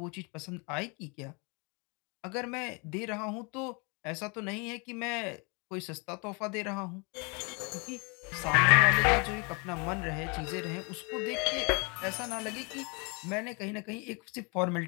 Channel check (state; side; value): quieter; right; 31.7 dB